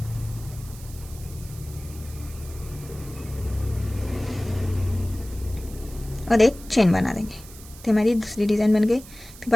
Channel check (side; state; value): right; noise; hiss, 18 dB below the sound